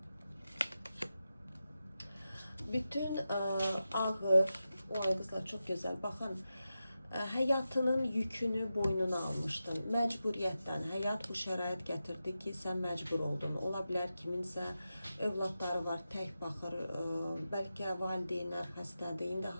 Bütün ağır, o kızlar çok güzel. Bakın, hayatının yükünü boynuna almışdın. Məcburiyyətdən, həyat bu şərait gətirdi ki, sən məcbur oldun. Ola bilər kiminsə övladları var, tək baxır, bəlkə valideynlər xəstədir. İndi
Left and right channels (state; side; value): inverted; both; correlation -0.91